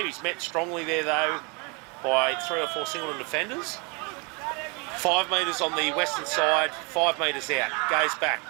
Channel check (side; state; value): left; quieter; 31.6 dB